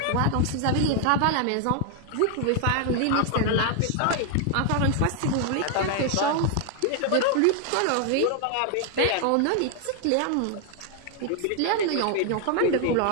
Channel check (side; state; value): both; different; correlation 0.00